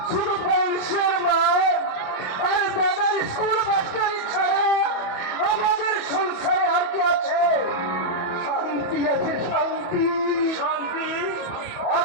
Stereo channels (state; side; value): late; right; 28 ms